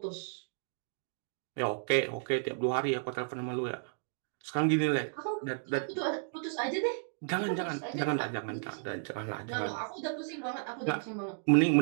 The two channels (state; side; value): silent; left; digital silence